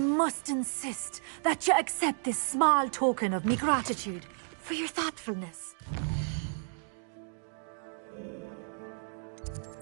insist that you accept this small token of me gratitude for your thoughtfulness.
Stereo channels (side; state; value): left; silent; 56 dB below the other